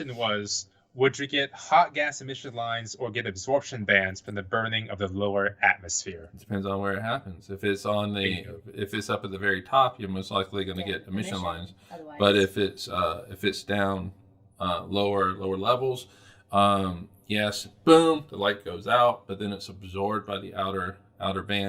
was, Would you get hot gas emission lines or get absorption bands from the burning of the lower atmosphere? It depends on where it happens. If it's if it's up at the very top, you're most likely going to get emission lines. Otherwise. But if it's down lower levels, yes, boom, the light goes out, but then it's absorbed by the outer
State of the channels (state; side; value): identical; both; correlation 1.00